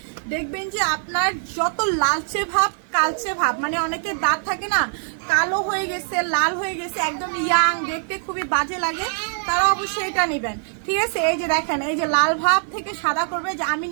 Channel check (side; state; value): left; silent; digital silence